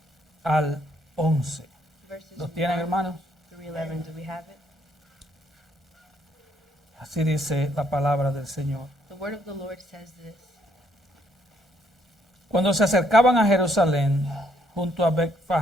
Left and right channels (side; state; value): both; normal; correlation 0.70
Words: al 11. verses ¿Los tienen, 1 hermanos? through 11. Do we have it? Así dice la palabra del Señor. The word of the Lord says this. Cuando se acercaban a Jerusalén, junto a